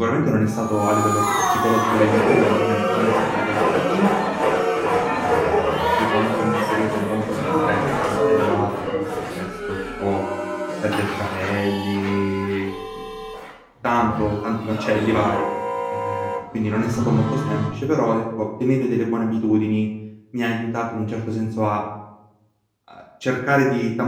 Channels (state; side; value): identical; both; correlation 1.00